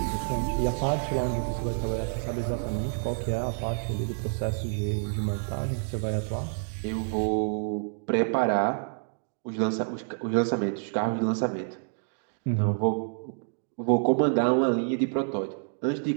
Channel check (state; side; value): silent; left; digital silence